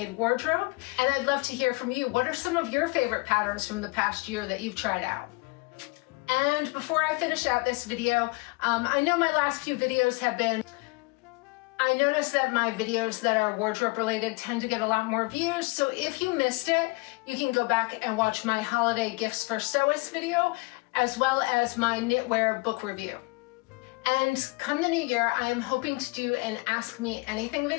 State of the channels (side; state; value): right; quieter; 27.1 dB